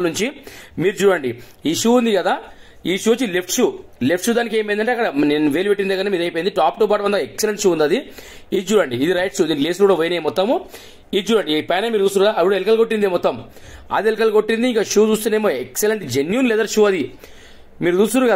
నుంచి. మీరు చూడండి, ఈ షూ ఉంది కదా, ఈ షూ వచ్చి లెఫ్ట్ షూ దానికి ఏమైందంటే అక్కడ నేను వేలు పెట్టిన దగ్గర మీద అయిపోయింది. టాప్ టు బాటం అంతా ఎక్సలెంట్ షూ ఉంది అది. ఇది చూడండి, ఇది రైట్ షూ, దీని లేస్ కూడా పోయినాయి మొత్తము. ఇది చూడండి, ఈ పైన మీరు చూస్తున్నారు అప్పుడు ఎలుకలు కొట్టింది మొత్తం, అది ఎలుకలు కొట్టింది. ఇంకా షూ చూస్తేనేమో ఎక్సలెంట్ జెన్యూన్ లెదర్ షూ అది. మీరు చూస్తున్నారు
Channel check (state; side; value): identical; both; correlation 1.00